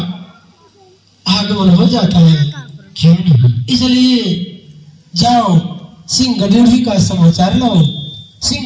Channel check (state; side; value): identical; both; correlation 1.00